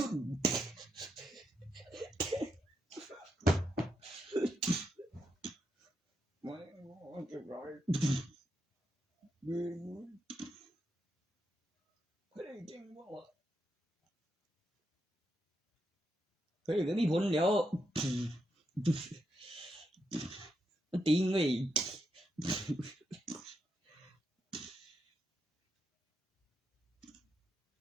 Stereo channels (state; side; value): normal; both; correlation 0.82